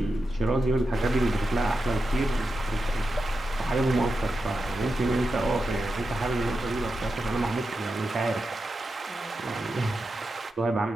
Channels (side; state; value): both; normal; correlation 0.89